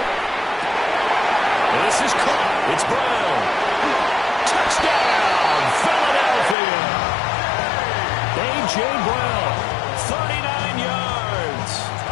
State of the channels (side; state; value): right; drops out; at 6.6 s